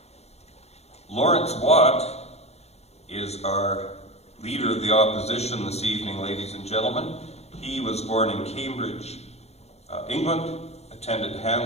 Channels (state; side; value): late; right; 0.31 ms